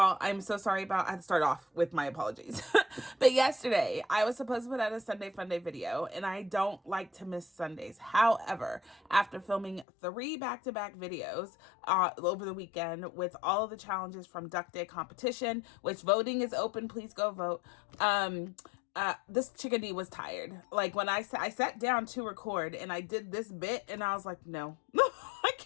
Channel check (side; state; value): right; drops out; at 9.9 s